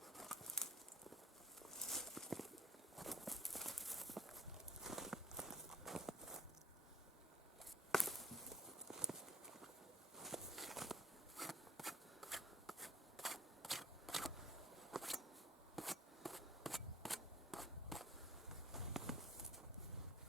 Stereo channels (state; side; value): normal; both; correlation 0.51